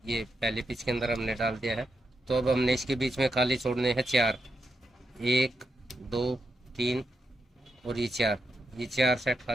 ये पहली पिच के अंदर हमने डाल दिया है। तो अब हमने इसके बीच में खाली छोड़ने हैं 4, 1, 2, 3 और ये 4 सेट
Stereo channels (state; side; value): normal; both; correlation 0.84